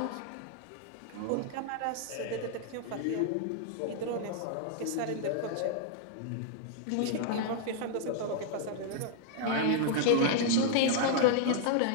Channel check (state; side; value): different; both; correlation -0.01